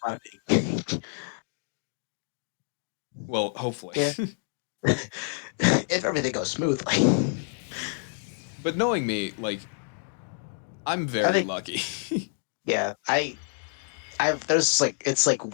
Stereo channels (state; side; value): silent; right; digital silence